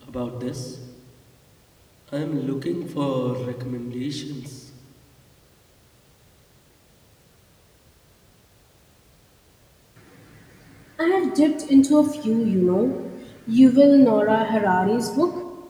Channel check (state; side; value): identical; both; correlation 1.00